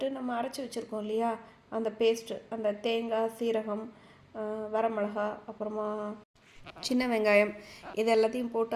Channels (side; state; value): both; identical; correlation 1.00